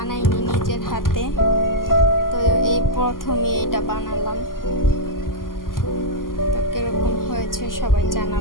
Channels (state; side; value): late; right; 0.91 ms